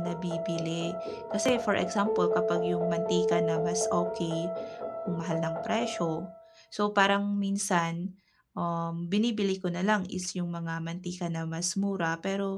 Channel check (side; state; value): both; identical; correlation 1.00